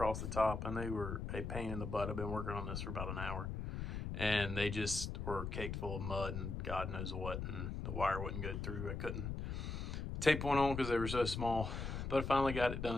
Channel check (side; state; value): left; noise; rumble, 4 dB below the sound